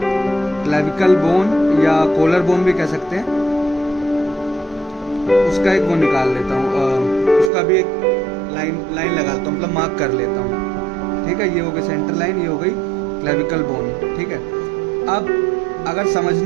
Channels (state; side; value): drops out; left; at 7.5 s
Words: क्लेविकल बोन या कॉलर बोन भी कह सकते हैं, उसका एक वो निकाल लेता हूँ, उसका भी एक लाइन लगा लेता हूँ, मतलब मार्क कर लेता हूँ। ठीक है, ये हो गई सेंटर लाइन, ये हो गई क्लेविकल बोन। ठीक है, अब अगर